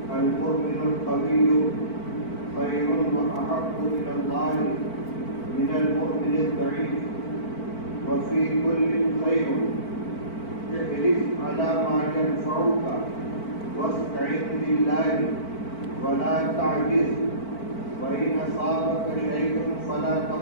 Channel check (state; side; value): late; right; 4.5 ms